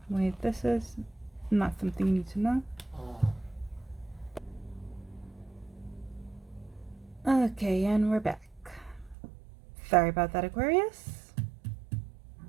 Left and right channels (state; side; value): drops out; left; at 9.2 s